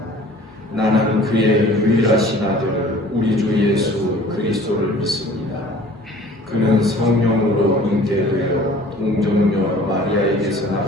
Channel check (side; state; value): both; normal; correlation 0.49